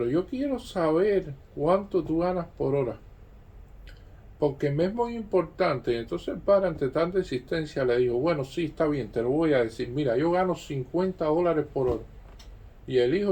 yo quiero saber cuánto tú ganas por hora. Porque me es muy importante. Entonces el padre, ante tanta insistencia, le dijo, bueno, sí, está bien, te lo voy a decir. Mira, yo gano $50 por hora. Y el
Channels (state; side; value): identical; both; correlation 1.00